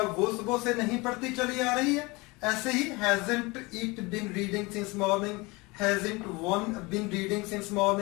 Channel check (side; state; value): right; quieter; 24.7 dB